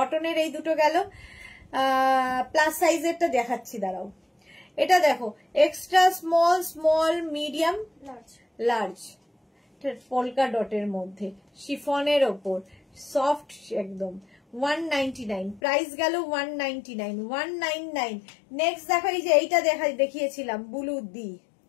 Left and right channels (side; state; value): right; drops out; at 15.6 s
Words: এই দুটো গেল। প্লাস সাইজেরটা দেখাচ্ছি, দাঁড়াও। এটা দেখো, extra small, small, medium, large, polka ডটের মধ্যে, শিফনের ওপর, সফট একদম, 199 প্রাইস গেল 199, 199। নেক্সট দেখো, এই যে এইটা দেখিয়েছিলাম ব্লু দি,